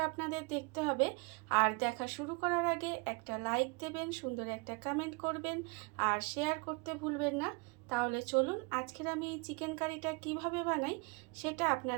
আপনাদের দেখতে হবে। আর দেখা শুরু করার আগে একটা লাইক দেবেন, সুন্দর একটা কমেন্ট করবেন আর শেয়ার করতে ভুলবেন না। তাহলে চলুন আজকের আমি এই চিকেন কারিটা কিভাবে বানাই সেটা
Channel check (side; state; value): left; quieter; 31.0 dB